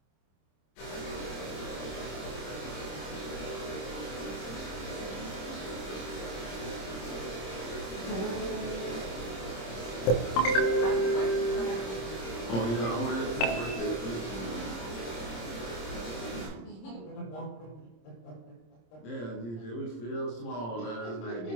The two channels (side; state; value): right; late; 26 ms